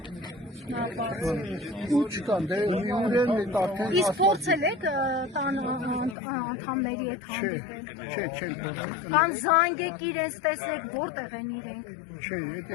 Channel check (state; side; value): drops out; right; at 6.2 s